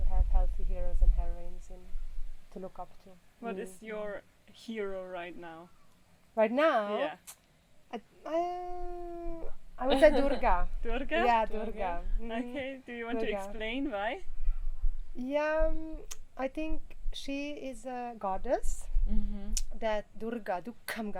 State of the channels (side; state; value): both; identical; correlation 1.00